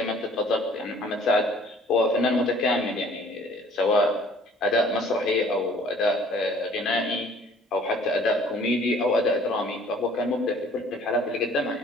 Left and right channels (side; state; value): both; normal; correlation 0.55